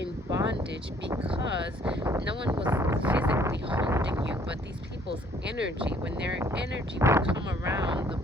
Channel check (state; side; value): normal; both; correlation 0.61